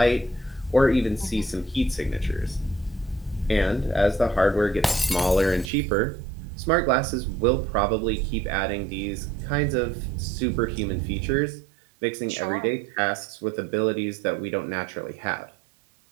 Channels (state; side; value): drops out; left; at 5.7 s